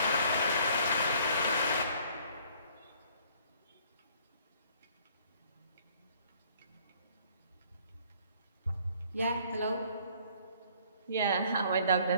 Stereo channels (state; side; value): inverted; both; correlation -0.59